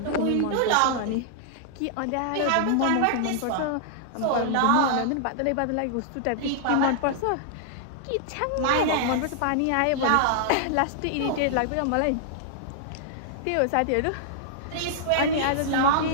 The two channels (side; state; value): both; different; correlation -0.01